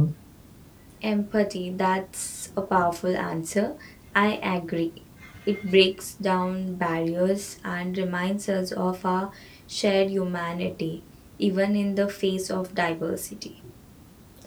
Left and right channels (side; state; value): both; identical; correlation 1.00